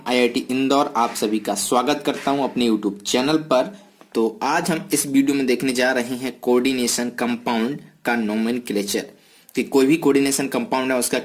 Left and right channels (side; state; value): both; identical; correlation 1.00